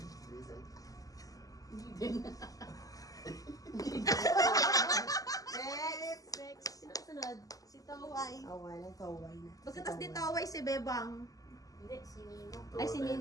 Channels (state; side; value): late; right; 0.17 ms